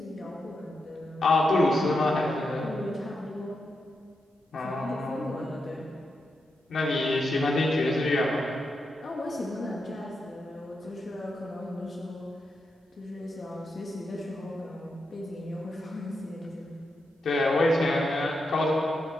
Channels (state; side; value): normal; both; correlation 0.86